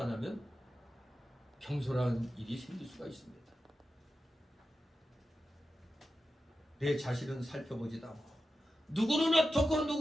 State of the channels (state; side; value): normal; both; correlation 0.92